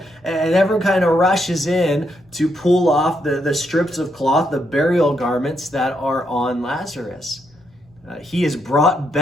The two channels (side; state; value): both; normal; correlation 0.78